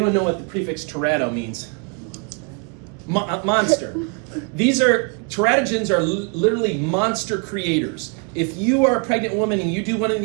know what the prefix terato means? Monster. Teratogens are literally monster creators. If you are a pregnant woman and you do one of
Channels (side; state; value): left; quieter; 35.7 dB